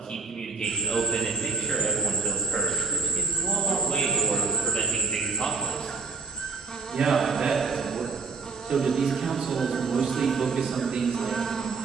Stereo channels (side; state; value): left; quieter; 4.7 dB